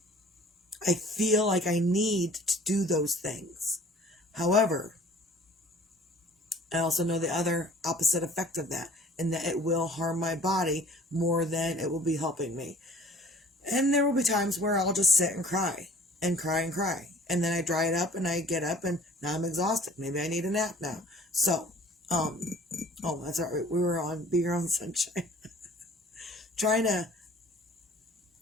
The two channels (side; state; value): both; normal; correlation 0.49